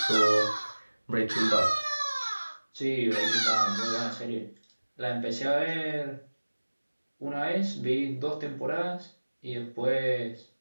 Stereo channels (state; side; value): inverted; both; correlation -1.00